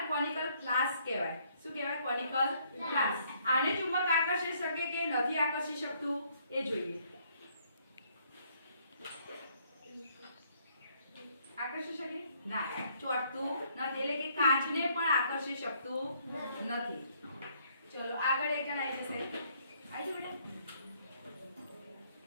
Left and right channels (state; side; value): inverted; both; correlation -0.67